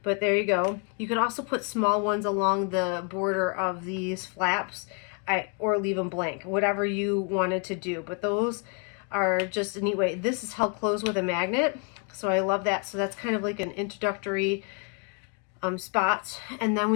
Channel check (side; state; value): right; quieter; 36.5 dB